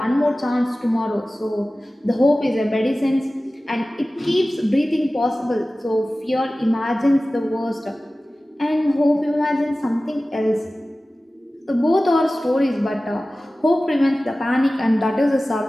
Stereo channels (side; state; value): both; normal; correlation 0.96